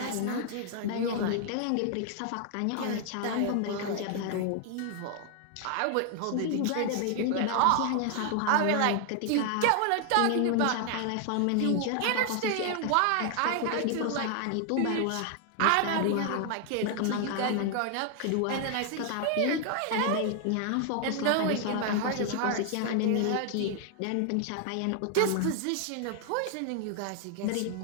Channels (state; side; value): different; both; correlation 0.00